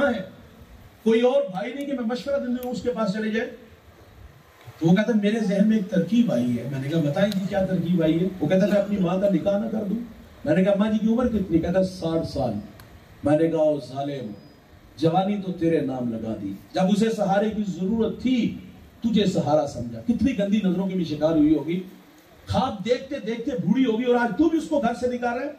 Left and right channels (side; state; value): both; identical; correlation 1.00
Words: है। कोई और भाई नहीं कि मैं मशवरा देने उसके पास चले जाए। तो वो कहता, मेरे जहन में एक तरकीब आई है। मैंने कहा, बताएं जी क्या तरकीब आई है? वो कहता, मैं अपनी माँ का निकाह ना कर दूं। मैंने कहा, माँ जी की उम्र कितनी? कहता, 60 साल। मैंने कहा, ओ जालिम, जवानी तो तेरे नाम लगा दी, जब उसे सहारे की जरूरत थी तुझे सहारा समझा। कितनी गंदी नजरों की भी शिकार हुई होगी, ख्वाब देखते देखते बूढ़ी होगी और आज तू भी उसको घर से निकाल रहा है।